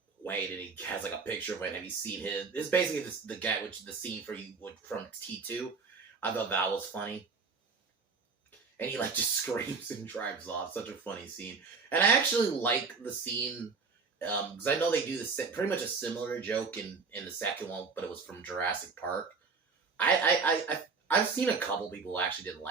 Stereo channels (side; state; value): left; quieter; 4.8 dB